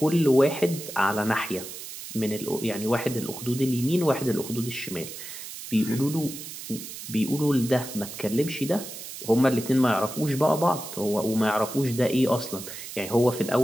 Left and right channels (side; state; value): right; noise; hiss, 11 dB below the sound